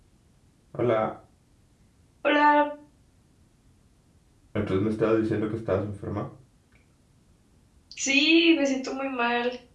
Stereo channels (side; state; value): both; identical; correlation 1.00